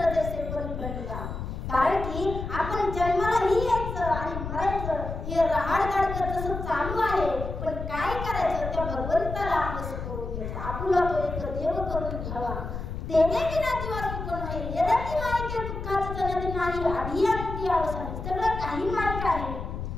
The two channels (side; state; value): left; noise; rumble, 6 dB below the sound